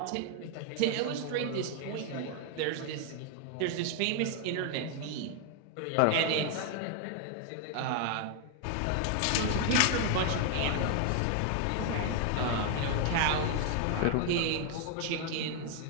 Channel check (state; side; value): different; both; correlation 0.00